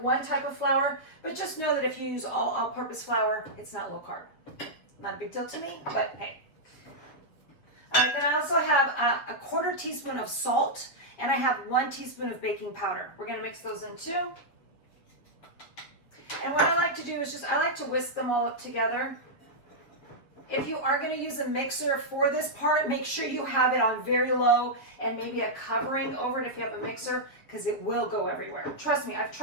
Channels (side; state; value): right; late; 7.5 ms